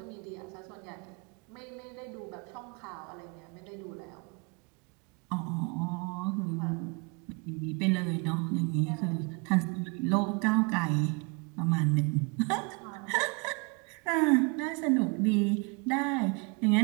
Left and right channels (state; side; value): quieter; left; 31.9 dB